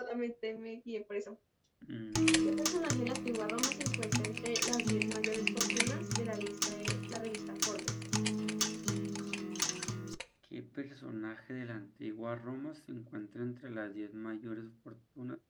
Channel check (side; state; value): both; identical; correlation 1.00